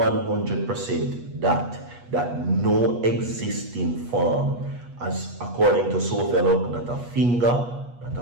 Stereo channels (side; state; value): left; late; 8.3 ms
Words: that no existing form, as according to Sophia Luck, not a finger, not